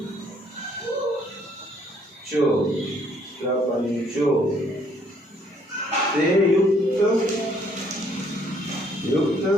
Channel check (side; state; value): both; normal; correlation 0.65